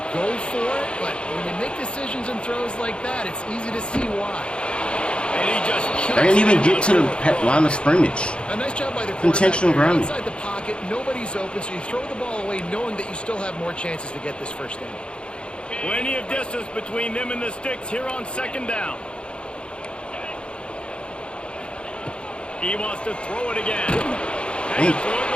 go for it, but when you make decisions and throws like that, it's easy to see why. And he just They didn't even get to the line of scrimmage. A nice job by the quarterback. Intentional there. grounding. Inside the pocket, nobody's open, so you throw the ball away knowing that you still have more chances to get this first down. Plenty of distance between them and the sticks here on 2nd down. He wants to throw it again. And he threw it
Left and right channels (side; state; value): right; late; 0.056 ms